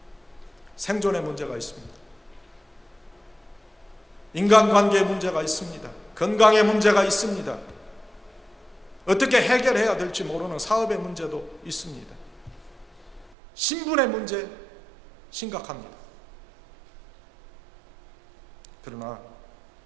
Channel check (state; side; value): drops out; left; at 13.3 s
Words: 생존의 문제가 있습니다. 인간관계의 문제가 있습니다. 건강의 문제가 있습니다. 어떻게 해결해야 될지 모르는 사업의 문제도 있습니다. 신분의 문제 심각합니다. 그러나